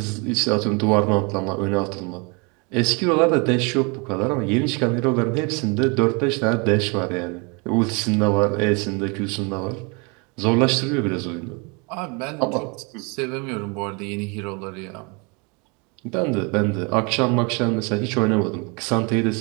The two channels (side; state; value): left; quieter; 31.1 dB